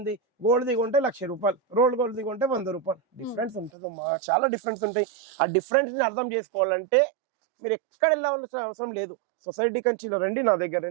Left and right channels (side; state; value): left; drops out; at 3.7 s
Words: గోల్డ్ దిగుంటే 1,00,000 రూపాయలు, రోల్డ్ గోల్డ్ దిగుంటే 100 రూపాయలు డిఫరెన్స్ ఉంటుందమ్మా, చాలా డిఫరెన్స్ ఉంటాయి. ఆ డిఫరెన్స్ ని అర్థం చేసుకోవాలంటే మీరు ఎక్కడ వెళ్ళాల్సిన అవసరం లేదు, సొసైటీ కంచిలో రండి, నా దగ్గర